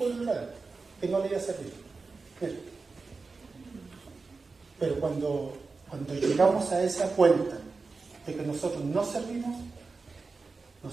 el lado, que no le iba a servir. Pero cuando llegamos a esa cuenta de que nosotros no servimos,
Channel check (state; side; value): quieter; left; 4.2 dB